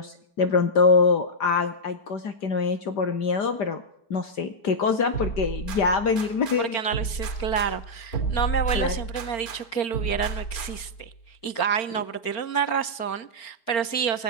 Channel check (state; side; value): late; right; 4.4 ms